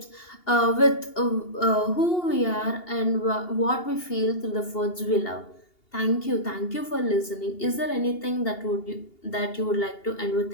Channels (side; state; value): right; late; 2.8 ms